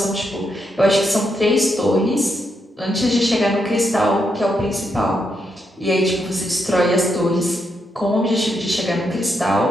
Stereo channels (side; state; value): both; normal; correlation 0.81